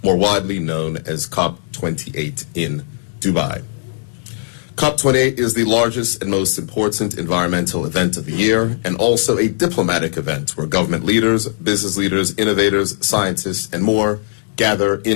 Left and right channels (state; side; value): silent; right; digital silence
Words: widely known as COP28 in Dubai. COP28 is the largest and most important environmental event of the year and also a diplomatic event where government leaders, business leaders, innovators, scientists, and more gather